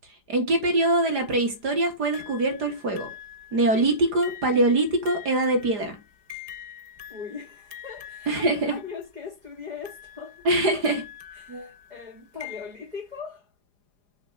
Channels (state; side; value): late; left; 4.9 ms